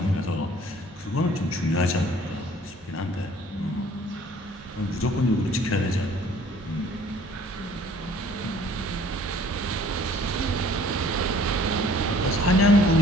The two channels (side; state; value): both; normal; correlation 0.54